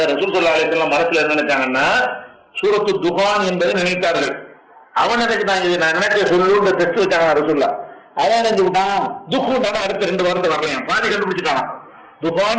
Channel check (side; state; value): both; identical; correlation 1.00